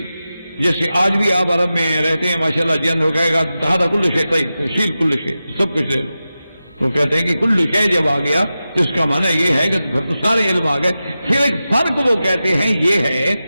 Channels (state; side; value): inverted; both; correlation -0.93